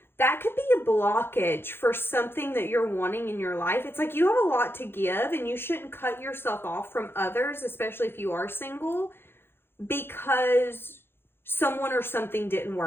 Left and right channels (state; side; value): late; right; 0.11 ms